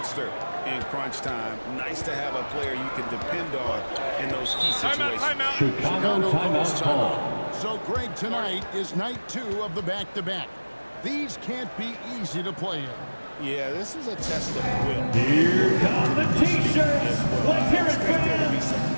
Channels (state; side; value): inverted; both; correlation -1.00